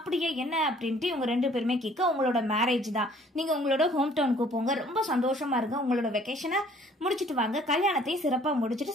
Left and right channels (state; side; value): normal; both; correlation 0.57